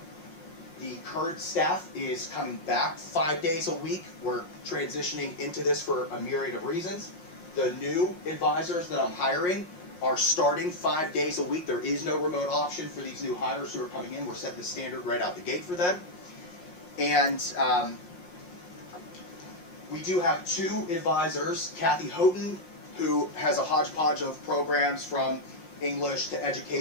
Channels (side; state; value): right; late; 5.6 ms